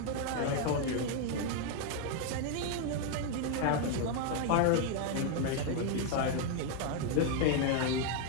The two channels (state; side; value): different; both; correlation 0.01